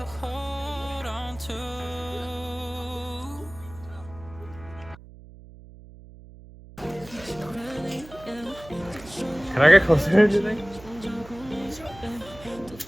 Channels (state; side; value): noise; right; hum, 19 dB below the sound